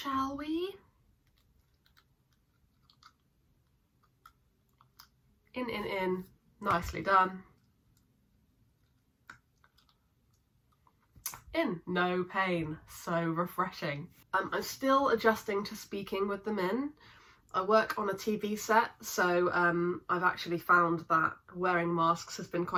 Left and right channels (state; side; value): identical; both; correlation 1.00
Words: we? In. Nicely done. In. No pain. So refreshing. I'm still adjusting to speaking with them in. I work on a TV set, so I've actually found that wearing masks has been